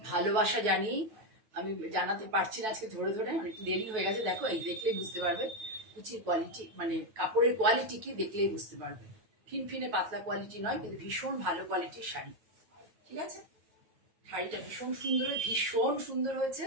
জানিয়ে, আমি জানাতে পারছি না আজকে ধরে ধরে, অনেক দেরি হয়ে গেছে। দেখো এই দেখলেই বুঝতে পারবে কুচির কোয়ালিটি, মানে কাপড়ের কোয়ালিটি কি দেখলেই বুঝতে পারবে। ফিনফিনে পাতলা কোয়ালিটি নয়, কিন্তু ভীষণ ভালো কোয়ালিটির শাড়ি। ঠিক আছে, শাড়িটা ভীষণ সুন্দর হয়েছে।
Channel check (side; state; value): left; late; 9.2 ms